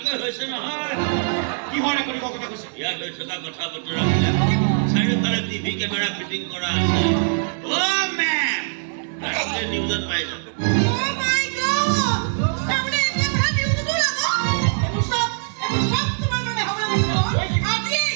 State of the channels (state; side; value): silent; left; 64 dB below the other